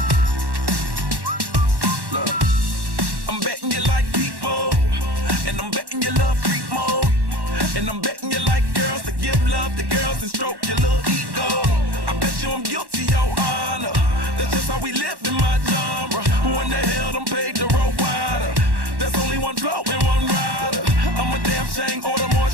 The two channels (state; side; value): late; left; 1.1 ms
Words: Look, I'm betting you like people, and I'm betting you love freak mode, and I'm betting you like girls to give love to girls and stroke your little ego. I bet you I'm guilty, your honor. That's just how we live in my genre. Who in the hell done paved the road wider? There's only one flow and one rider. I'm a damn shame, order more